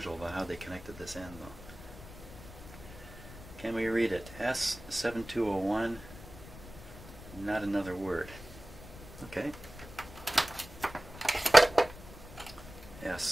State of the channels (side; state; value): left; noise; rumble, 16 dB below the sound